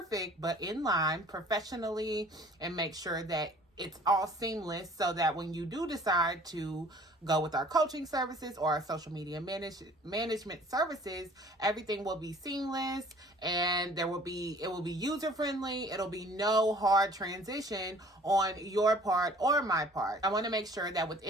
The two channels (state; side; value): normal; both; correlation 0.52